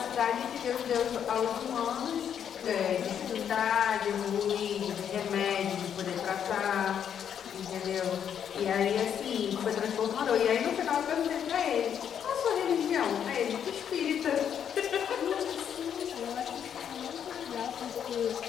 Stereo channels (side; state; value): right; quieter; 8.6 dB